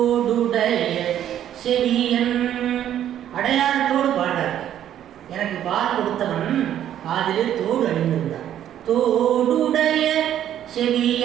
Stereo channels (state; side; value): quieter; left; 10.9 dB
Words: செவியன் அடையாளத்தோடு பாடுறார். எனக்கு பால் கொடுத்தவன் காதிலே தோடு அணிந்திருந்தார். தோடுடைய